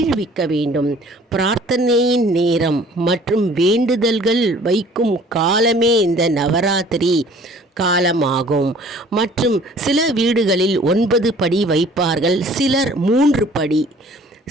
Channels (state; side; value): normal; both; correlation 0.52